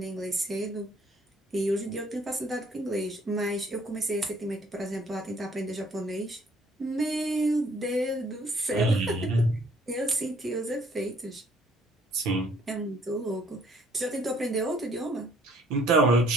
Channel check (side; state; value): both; normal; correlation 0.62